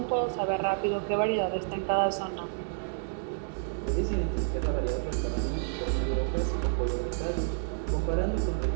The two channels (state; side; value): silent; left; digital silence